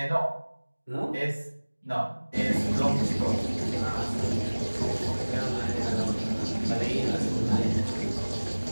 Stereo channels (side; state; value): both; inverted; correlation -1.00